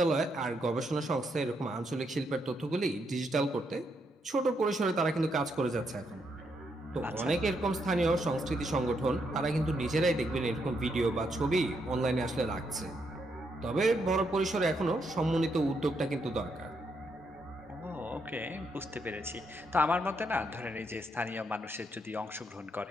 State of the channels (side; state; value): both; normal; correlation 0.78